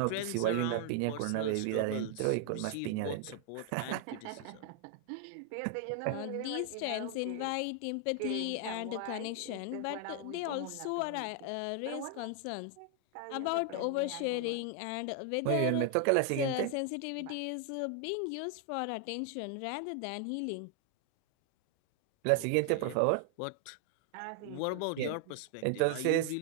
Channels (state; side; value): different; both; correlation 0.00